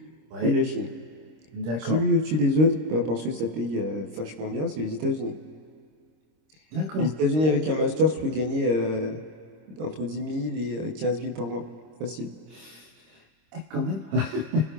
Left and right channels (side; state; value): left; late; 26 ms